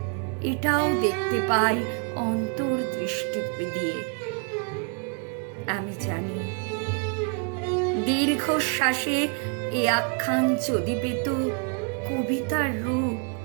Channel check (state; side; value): quieter; left; 39.1 dB